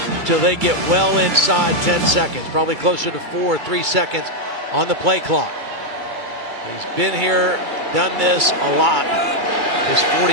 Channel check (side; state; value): left; late; 2.3 ms